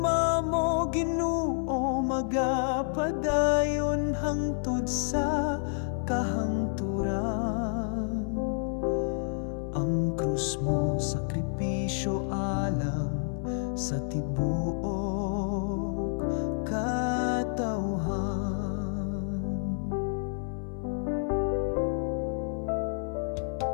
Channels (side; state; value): right; silent; 56 dB below the other